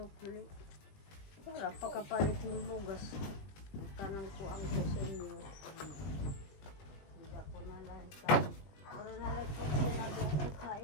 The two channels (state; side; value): late; right; 20 ms